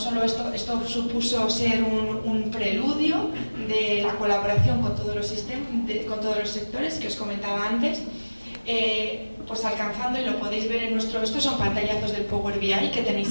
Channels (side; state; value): both; inverted; correlation -1.00